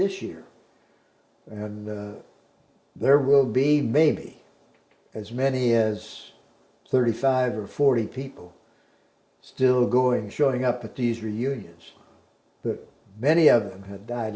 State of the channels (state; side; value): identical; both; correlation 1.00